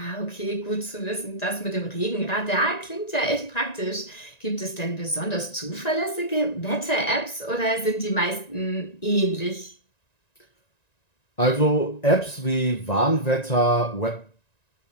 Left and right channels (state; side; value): late; right; 1.9 ms